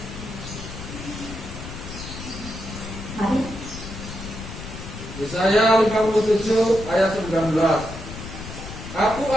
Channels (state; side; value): noise; left; rumble, 10 dB below the sound